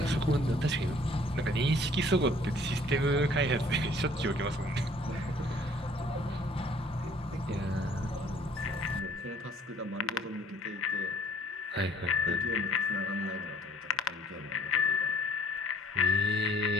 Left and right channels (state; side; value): normal; both; correlation 0.57